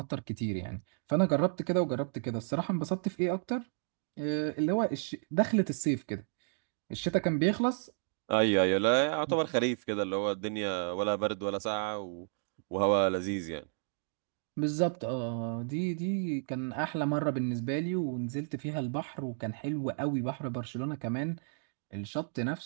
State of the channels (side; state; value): left; silent; digital silence